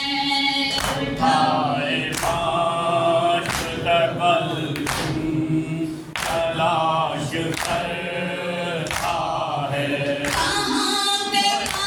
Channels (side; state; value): both; identical; correlation 1.00